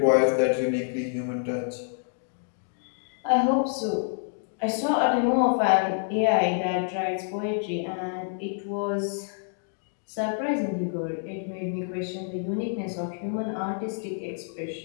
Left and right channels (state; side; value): silent; right; digital silence